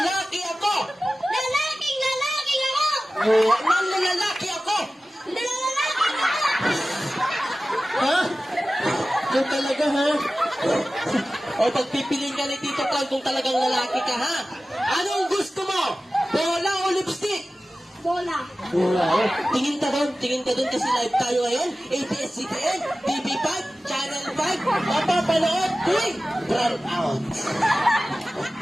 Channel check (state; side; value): normal; both; correlation 0.96